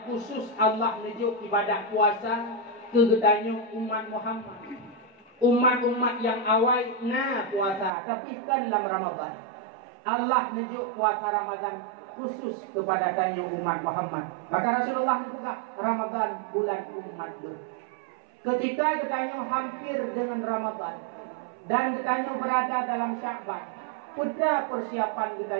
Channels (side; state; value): left; drops out; at 7.9 s